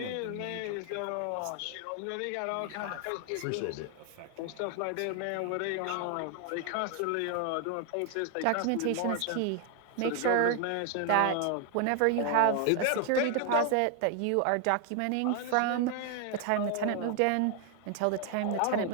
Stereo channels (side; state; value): both; different; correlation 0.01